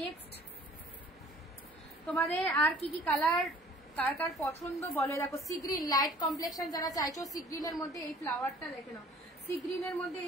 তোমাদের আর কি কি কালার কার কার পছন্দ বলে, দেখো সি গ্রিন লাইট কমপ্লেক্সন যারা চাইছো, সি গ্রিনের মধ্যে এই ফ্লাওয়ারটা দেখে নাও, সি গ্রিনের মধ্যে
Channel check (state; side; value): normal; both; correlation 0.53